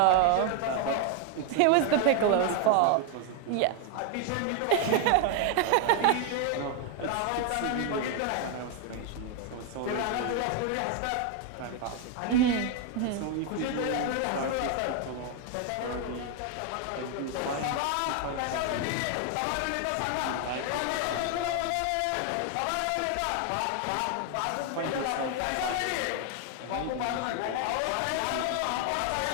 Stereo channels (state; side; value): different; both; correlation 0.01